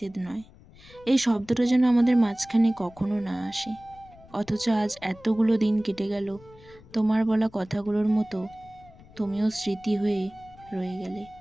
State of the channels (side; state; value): left; noise; rumble, 23 dB below the sound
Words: নয়। এই শব্দটা যেন আমাদের মাঝখানে কখনো না আসে। অথচ আজ এতগুলো দিন কেটে গেল, তোমার বলা কথাগুলোর মতো তুমিও স্মৃতি হয়ে রয়ে গেলে